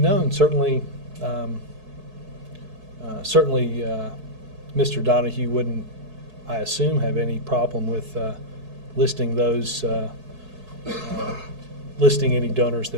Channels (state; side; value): late; left; 4.6 ms